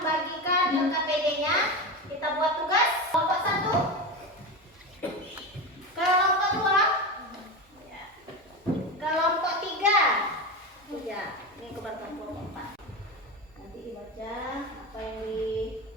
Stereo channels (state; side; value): normal; both; correlation 0.21